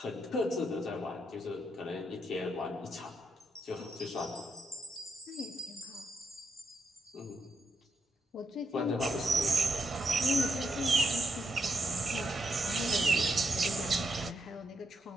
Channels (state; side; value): normal; both; correlation 0.81